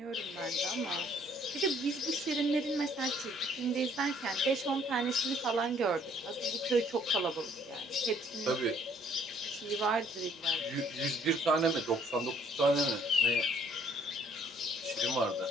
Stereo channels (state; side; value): normal; both; correlation 0.62